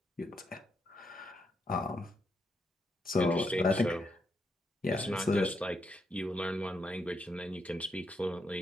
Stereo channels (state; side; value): normal; both; correlation 0.80